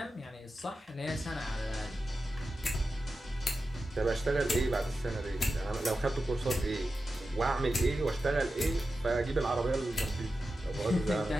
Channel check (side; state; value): both; normal; correlation 0.92